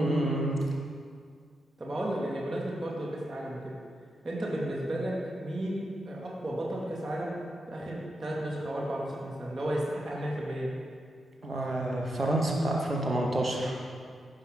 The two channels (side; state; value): both; normal; correlation 0.85